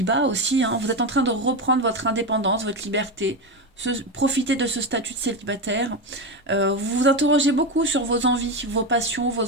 aussi. Hein. Vous êtes en train de reprendre votre indépendance, votre liberté. Profiter de ce statut de célibataire. Vous vous interrogez beaucoup sur vos envies, vos passions,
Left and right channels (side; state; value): both; normal; correlation 0.14